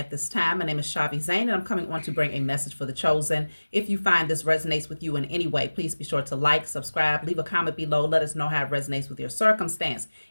this time. My name is Shavi Zane, and I'm coming on to bring a message for the chosen. If you find this resonates with you in any way, please be sure to like, subscribe, leave a comment below. Let us know how it resonates with your circumstance.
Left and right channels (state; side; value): inverted; both; correlation -1.00